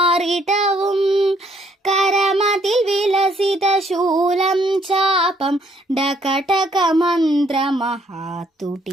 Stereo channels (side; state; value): both; normal; correlation 0.67